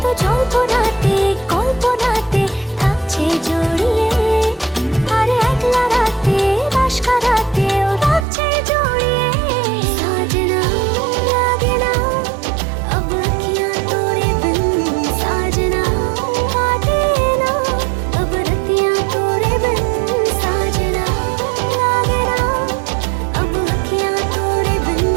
তো জল্পনাতে কল্পনাতে থাকছে জড়িয়ে আর একলা রাতে রাশ কারাতেও থাকছে জড়িয়ে সাজনা লাগে না अब अखियाँ तोरे बिन साजना काटे ना अब रतियाँ तोरे बिन साजना लागे ना अब अखियाँ तोरे बिन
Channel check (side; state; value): left; drops out; at 8.2 s